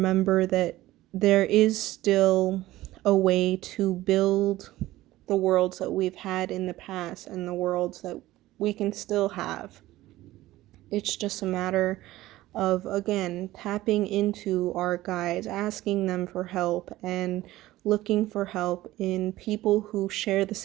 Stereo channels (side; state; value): left; quieter; 16.5 dB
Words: that there is still a way to build the worlds that we've had in the past and the worlds that we can still have. It's just a matter of, again, tapping into our guides, asking them for help, and looking for help in people who share the